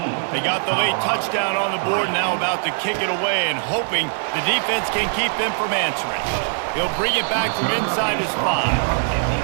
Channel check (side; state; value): left; silent; digital silence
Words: They got the late touchdown on the board, now about to kick it away and hoping the defense can keep them from answering. He'll bring it back from inside his